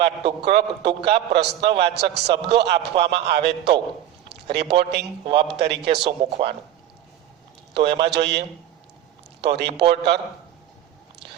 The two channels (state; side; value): quieter; left; 11.8 dB